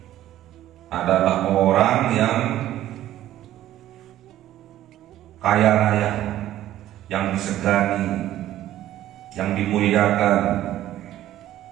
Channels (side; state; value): left; quieter; 13.3 dB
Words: adalah orang yang kaya raya, yang disegani, yang dimuliakan,